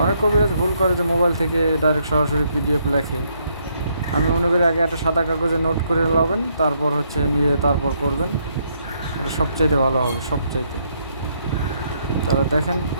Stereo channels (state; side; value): inverted; both; correlation -0.73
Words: অনেক কবিরাজ ভুল করে যে মোবাইল থেকে ডাইরেক্ট সরাসরি পিডিএফ লেখে। আমি মনে করি আগে একটা সাদা কাগজে নোট করে নেবেন, তারপর নিয়ে তারপর করবেন। এটা সবচাইতে ভালো হবে, সবচাইতে। তারা দেখেন,